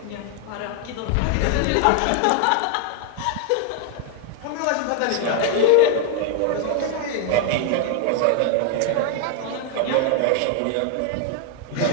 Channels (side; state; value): both; different; correlation 0.00